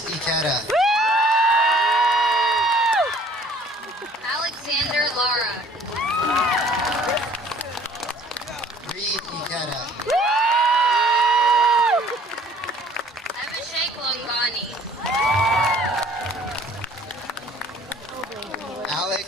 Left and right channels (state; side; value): normal; both; correlation 0.55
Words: Ikeda. Alexander Lara. Reed Ikeda. Abhishek Longani. Alex